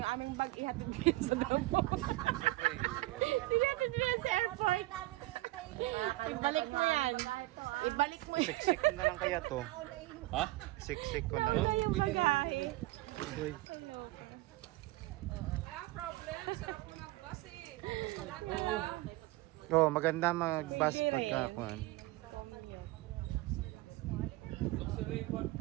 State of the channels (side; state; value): left; quieter; 18.8 dB